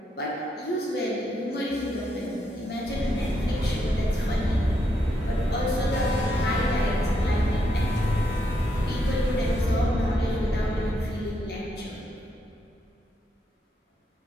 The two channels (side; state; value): both; normal; correlation 0.79